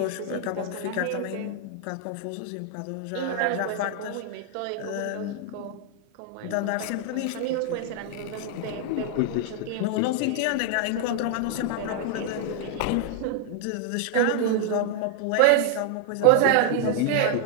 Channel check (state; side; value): different; both; correlation 0.00